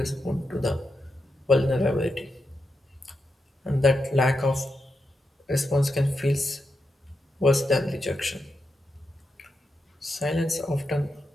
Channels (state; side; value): normal; both; correlation 0.86